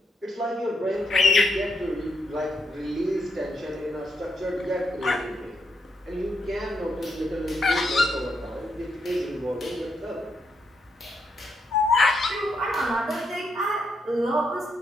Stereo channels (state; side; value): normal; both; correlation 0.79